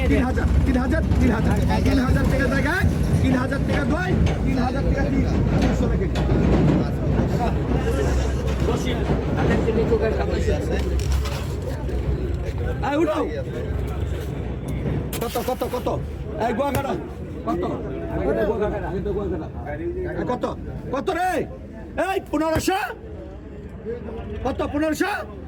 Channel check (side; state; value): both; identical; correlation 1.00